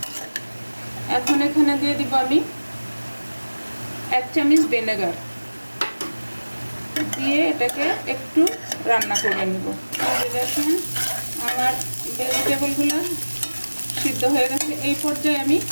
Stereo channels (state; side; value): inverted; both; correlation -1.00